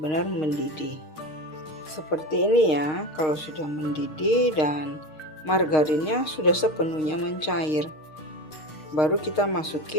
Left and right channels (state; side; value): late; right; 6.5 ms